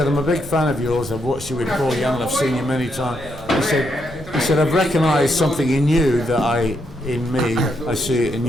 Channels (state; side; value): noise; right; rumble, 20 dB below the sound